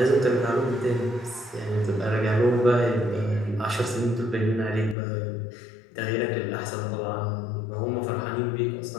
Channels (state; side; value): drops out; right; at 5.0 s